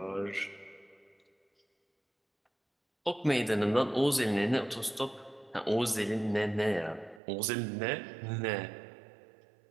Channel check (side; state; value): left; drops out; at 7.2 s